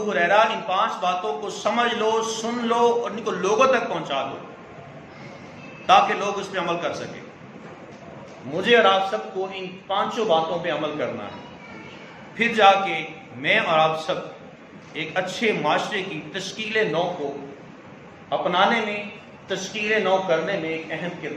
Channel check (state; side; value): identical; both; correlation 1.00